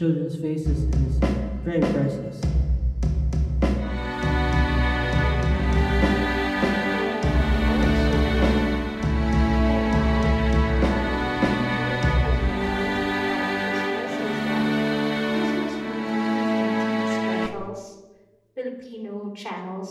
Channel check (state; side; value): identical; both; correlation 1.00